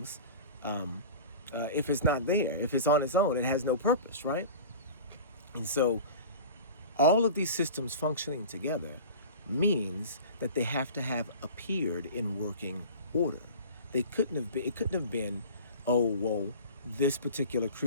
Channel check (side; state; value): both; inverted; correlation -0.37